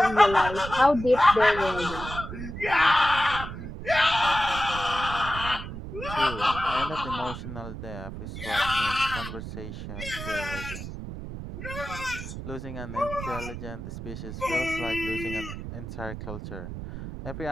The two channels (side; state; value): right; noise; rumble, 8 dB below the sound